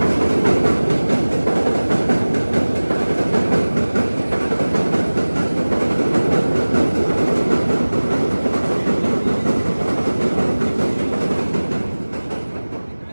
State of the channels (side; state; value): both; inverted; correlation -1.00